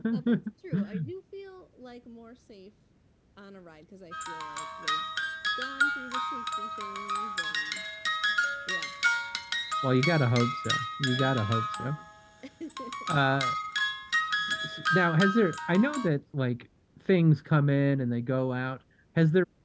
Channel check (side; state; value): both; identical; correlation 1.00